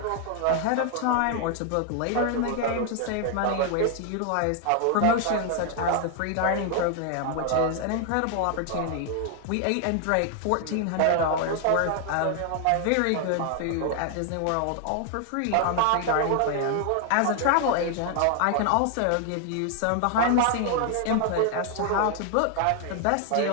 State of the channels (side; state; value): both; different; correlation 0.00